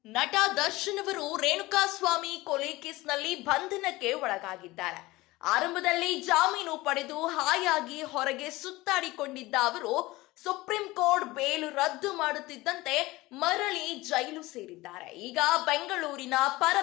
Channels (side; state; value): right; quieter; 19.8 dB